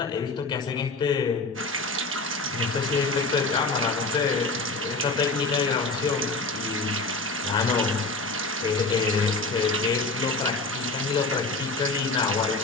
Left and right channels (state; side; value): quieter; right; 3.3 dB